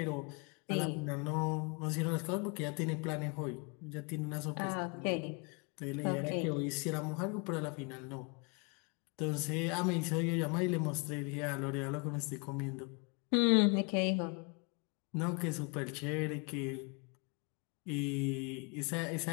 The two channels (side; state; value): right; quieter; 33.2 dB